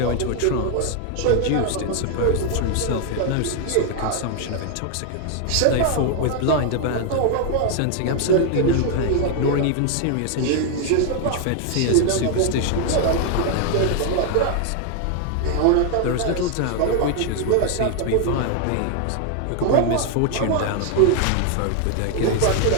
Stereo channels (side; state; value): both; different; correlation 0.00